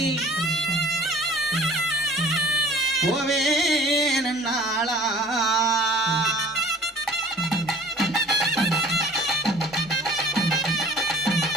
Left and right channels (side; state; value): both; normal; correlation 0.49